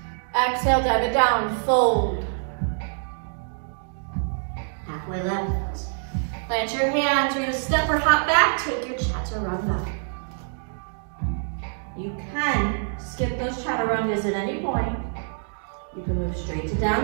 Exhale, dive it down, fold. Halfway lift. Plant your hands, you're gonna step or hop back, take your chaturanga. You can skip those chaturangas at any point. You can move straight to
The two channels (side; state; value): left; silent; digital silence